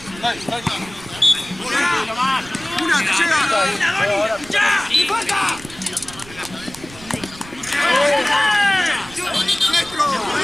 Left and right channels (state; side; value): noise; right; rumble, 19 dB below the sound